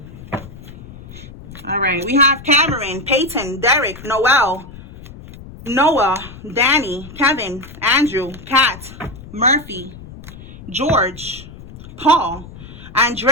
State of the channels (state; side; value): noise; left; rumble, 16 dB below the sound